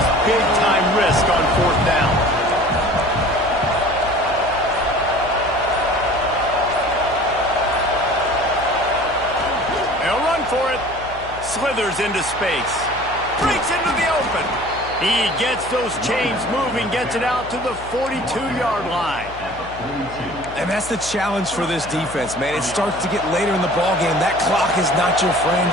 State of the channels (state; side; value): noise; left; hum, 16 dB below the sound